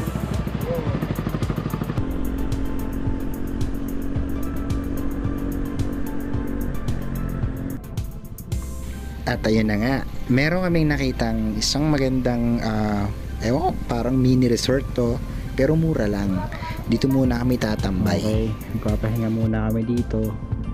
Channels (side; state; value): both; identical; correlation 1.00